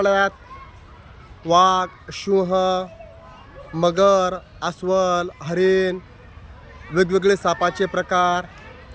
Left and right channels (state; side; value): identical; both; correlation 1.00